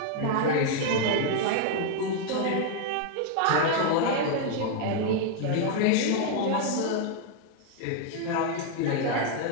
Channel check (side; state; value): both; different; correlation 0.00